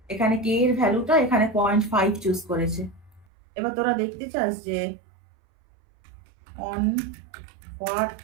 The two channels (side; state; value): left; drops out; at 3.2 s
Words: এখানে কে এর ভ্যালুটা এখানে 0.5 চুজ করেছে। এবার তোরা দেখতে চাস যে on what